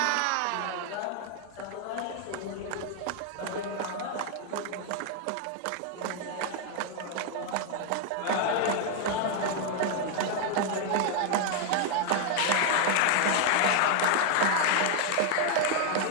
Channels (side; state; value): both; different; correlation 0.01